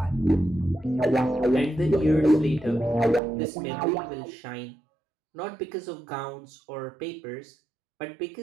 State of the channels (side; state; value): left; drops out; at 3.2 s